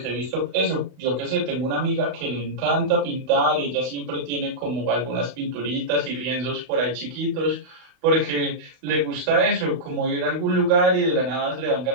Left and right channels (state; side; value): late; left; 31 ms